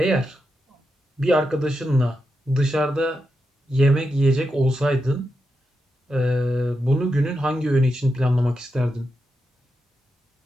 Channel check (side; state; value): both; normal; correlation 0.87